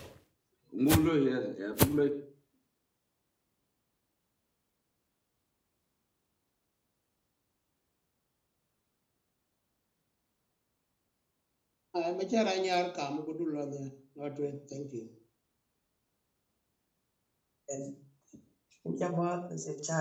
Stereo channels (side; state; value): both; identical; correlation 1.00